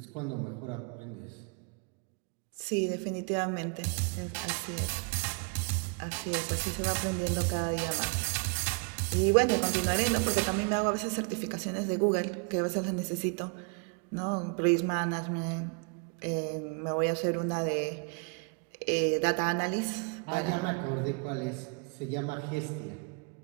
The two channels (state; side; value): quieter; left; 35.5 dB